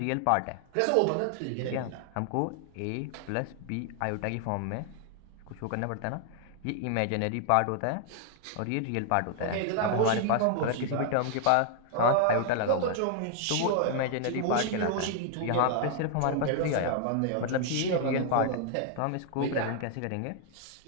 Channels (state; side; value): different; both; correlation 0.00